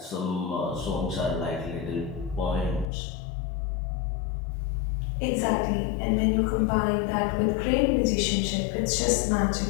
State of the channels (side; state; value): right; drops out; at 2.9 s